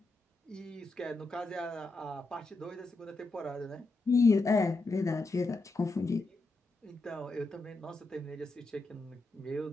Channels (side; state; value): right; quieter; 3.1 dB